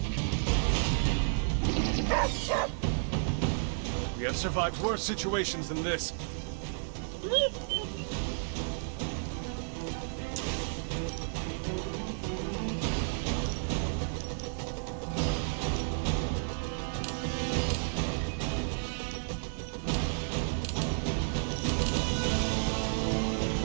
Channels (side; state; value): left; silent; 56 dB below the other